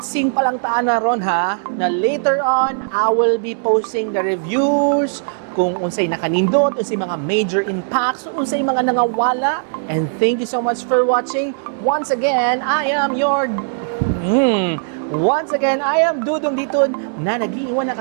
pa lang taan na ron ha, na later on, I will be posting the reviews, kung unsay nakanindot, unsay mga major impacts, unsay mga nangawala. And thank you so much for watching. Once again, I am Dudong Diton na nag-iiwan ng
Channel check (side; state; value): left; silent; digital silence